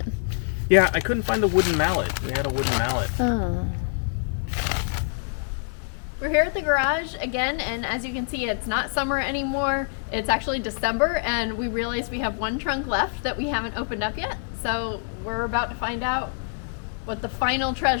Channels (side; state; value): right; silent; 61 dB below the other